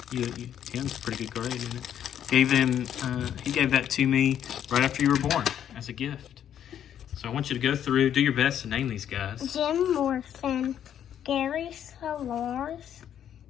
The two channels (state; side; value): quieter; right; 9.8 dB